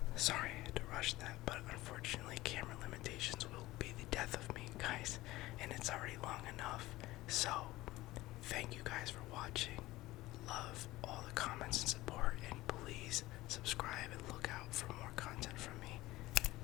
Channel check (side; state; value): right; quieter; 18.0 dB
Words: Sorry I had to rush that, but unfortunately camera limitations will be the death of me, guys, and it's already long enough. So, thank you guys for watching. Love all